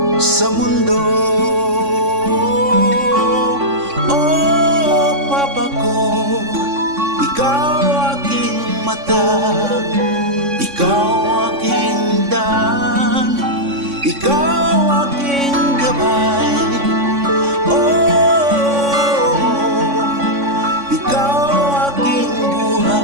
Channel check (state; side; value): late; left; 3.6 ms